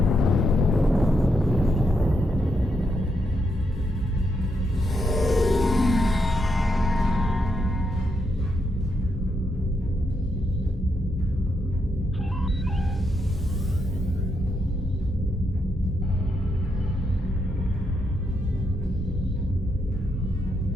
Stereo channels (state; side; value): normal; both; correlation 0.80